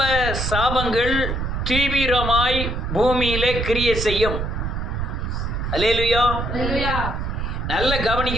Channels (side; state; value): right; noise; rumble, 3 dB below the sound